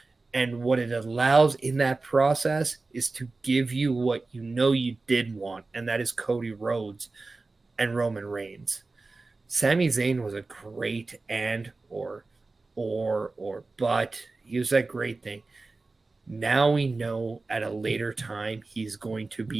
And what it allows in that process is to give you what you did want, and that is Cody Rhodes and Roman Reigns. Sami Zayn was a great but he was that great thing. Now we know at a later time he's going to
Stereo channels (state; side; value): quieter; left; 3.6 dB